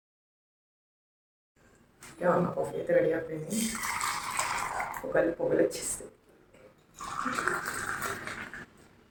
నా కాఫీ అయితే రెడీ అయిపోయింది. పొగలు వచ్చేస్తుంది.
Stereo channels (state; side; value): identical; both; correlation 1.00